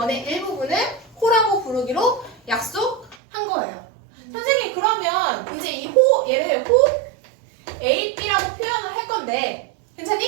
일부분을 호라고 부르기로 약속한 거예요. 선생님, 그러면 이제 이 호, 얘를 호 A, B라고 표현을 할 건데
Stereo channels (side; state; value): left; drops out; at 3.2 s